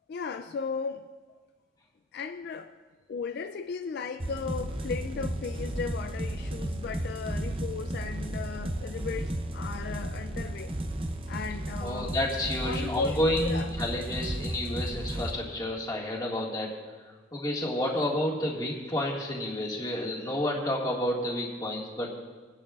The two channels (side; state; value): both; normal; correlation 0.55